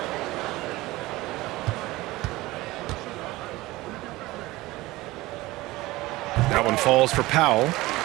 That one falls for Powell.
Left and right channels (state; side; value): quieter; left; 19.1 dB